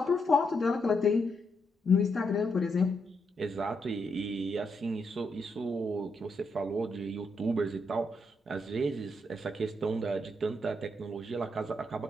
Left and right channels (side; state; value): both; normal; correlation 0.80